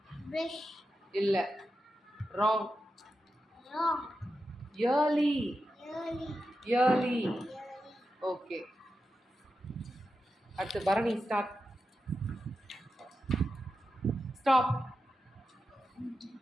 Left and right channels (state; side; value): normal; both; correlation 0.89